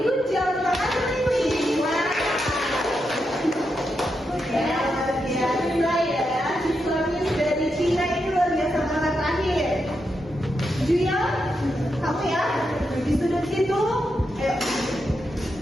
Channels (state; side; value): normal; both; correlation 0.85